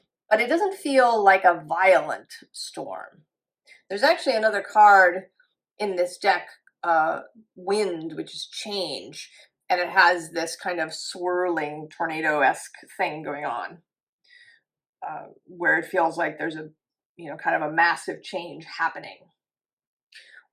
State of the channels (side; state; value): both; identical; correlation 1.00